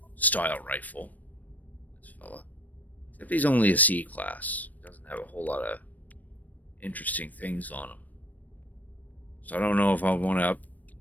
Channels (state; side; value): late; right; 0.079 ms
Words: style rifle. This fella. Except he's only a C class. Doesn't have a whole lot of interesting things on him. So I don't know if I want to